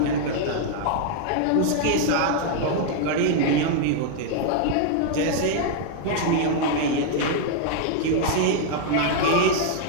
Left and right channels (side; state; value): both; different; correlation 0.00